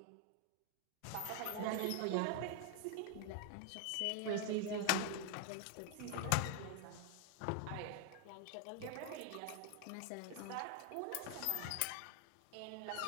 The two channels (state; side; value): different; both; correlation 0.00